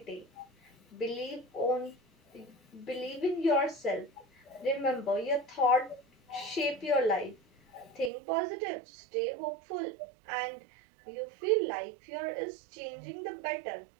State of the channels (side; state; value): left; drops out; at 8.1 s